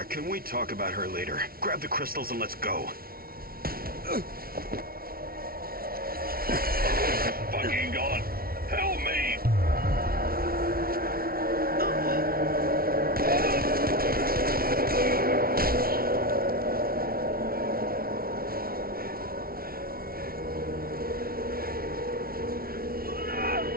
can we talk about her later? Grab the crystals and let's go. Fucking God! Help me!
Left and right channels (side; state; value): left; late; 0.43 ms